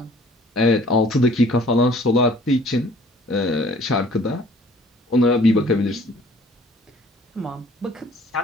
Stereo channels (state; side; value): normal; both; correlation 0.54